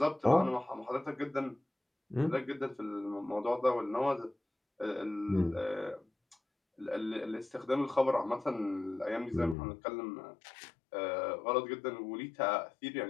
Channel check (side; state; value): right; drops out; at 9.6 s